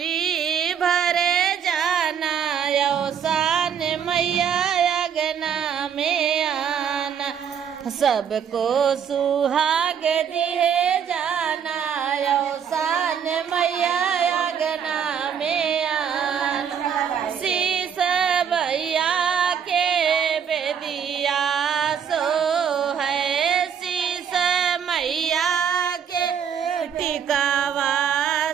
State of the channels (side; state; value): left; quieter; 7.9 dB